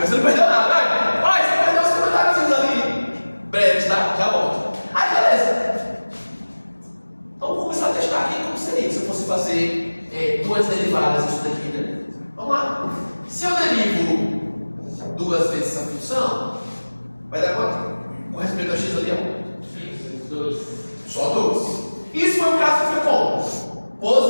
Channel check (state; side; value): inverted; both; correlation -1.00